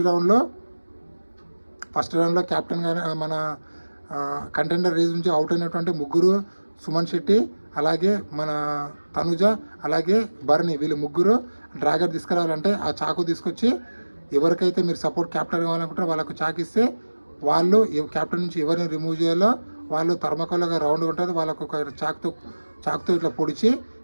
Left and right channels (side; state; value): both; inverted; correlation -1.00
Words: రౌండ్లో క్యాప్టెన్గా మన కంటెండర్ రేస్ నుంచి అవుట్ అయినటువంటి ముగ్గురు సుమన్ శెట్టి, అలాగే మన తనుజ, అలాగే బర్ని, వీళ్ళు ముగ్గురు డ్రాగర్ తీసుకురావాలంటే ఆ చాకు తీసుకొచ్చి ఎవరికైతే మీరు సపోర్ట్ క్యాప్టెన్ కావాలనుకుంటారో వాళ్ళకు చాకు ఇస్తే వాళ్ళు క్యాప్టెన్ నుంచి ఎవరిని రిమూవ్ చేయాలో వాళ్ళు థర్మకోల్గా రౌండ్ ఉంటుంది, వాళ్ళకు ఒక చాకుతో ఇట్లా పొడిచి